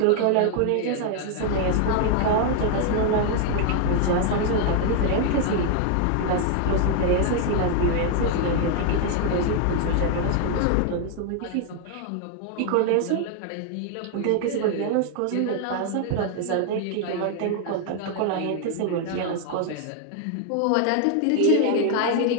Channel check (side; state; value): both; different; correlation 0.00